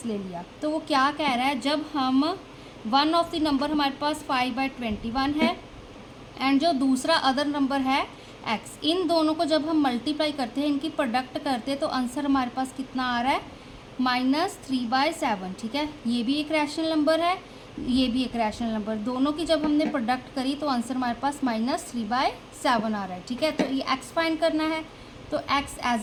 ले लिया। तो वो क्या कह रहा है, जब हम वन ऑफ द नंबर हमारे पास 5/21 है एंड जो दूसरा अदर नंबर है x, इन दोनों को जब हम मल्टीप्लाई करते हैं, इनकी प्रोडक्ट करते हैं, तो आंसर हमारे पास कितना आ रहा है -3/7, ठीक है। ये भी एक रैशनल नंबर है, ये भी एक रैशनल नंबर, दोनों की जब हमने प्रोडक्ट करी तो आंसर हमारे पास -3/7 आ रहा है, ठीक है। तो ये x फाइंड करना है, तो x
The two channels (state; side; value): identical; both; correlation 1.00